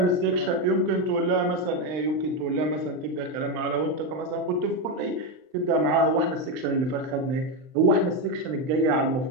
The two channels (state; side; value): late; left; 39 ms